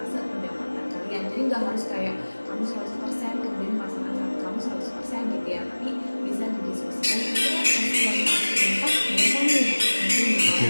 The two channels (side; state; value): both; inverted; correlation -1.00